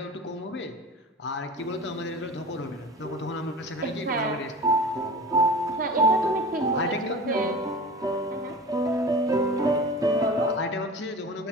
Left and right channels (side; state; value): both; normal; correlation 0.36